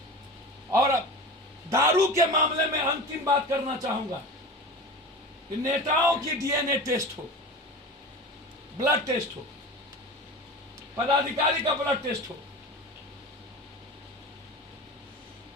और दारू के मामले में अंतिम बात करना चाहूंगा कि नेताओं की डीएनए टेस्ट हो, ब्लड टेस्ट हो, पदाधिकारी का ब्लड टेस्ट हो,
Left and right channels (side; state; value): both; normal; correlation 0.32